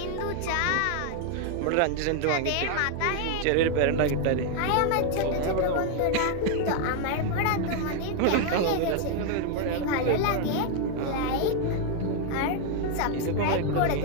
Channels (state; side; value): different; both; correlation 0.00